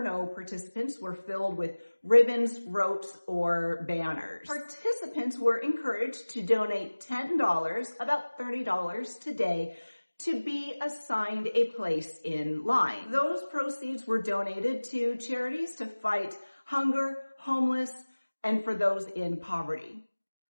participants were filled with ribbons, ropes, or banners. Participants were encouraged to donate $10, about $30 today, to be assigned a place in line. Those proceeds were donated to charities to fight hunger, homeless, and for those in poverty.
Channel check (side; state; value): both; inverted; correlation -1.00